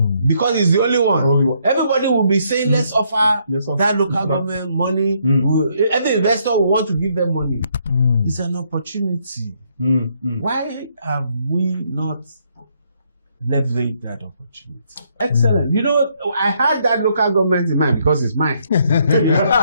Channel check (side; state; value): both; inverted; correlation -0.72